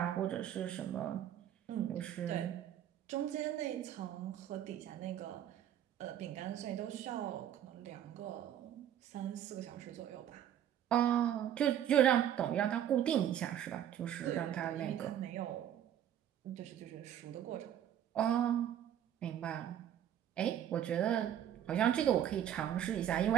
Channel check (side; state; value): left; quieter; 10.5 dB